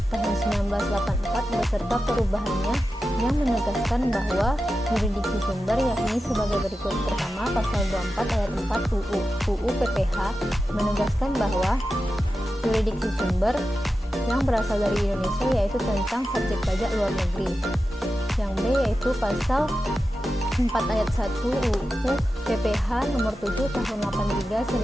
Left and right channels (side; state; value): both; normal; correlation 0.92